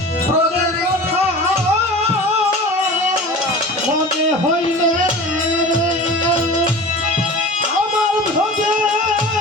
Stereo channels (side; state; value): both; normal; correlation 0.36